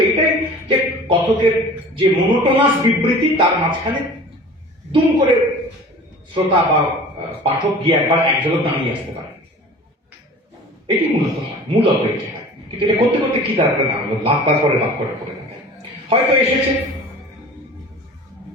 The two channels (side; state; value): both; normal; correlation 0.42